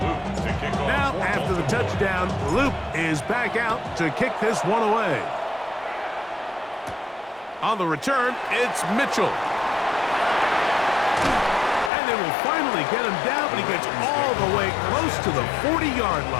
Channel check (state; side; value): drops out; right; at 11.9 s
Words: to kick off. Now, after the touchdown, Loop is back out to kick this one away. On the return, it's Mitchell. And they will finally get him down, but he gets all the way close to the 40-yard